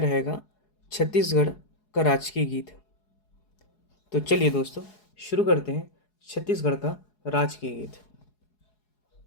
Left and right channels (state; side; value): late; right; 4.8 ms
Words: छत्तीसगढ़ का राजकीय गीत। तो चलिए दोस्तों, शुरू करते हैं छत्तीसगढ़ का राजकीय गीत।